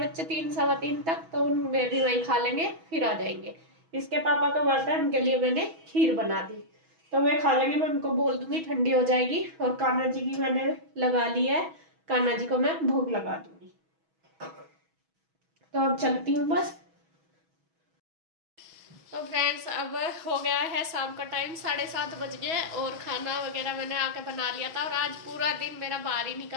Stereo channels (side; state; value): left; late; 6.2 ms